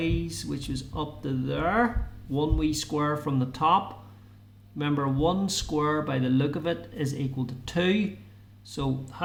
which is up to there. 1 wee square from the top. Remember, 1 square by the look of it is equal to 2. So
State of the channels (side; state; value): both; identical; correlation 1.00